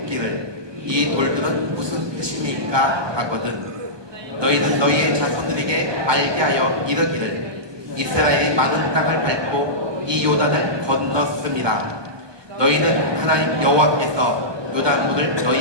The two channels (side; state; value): left; late; 1.2 ms